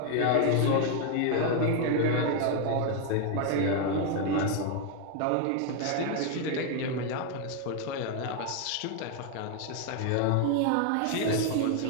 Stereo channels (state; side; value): different; both; correlation 0.01